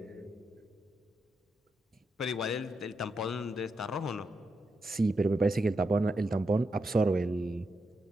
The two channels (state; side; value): normal; both; correlation 0.84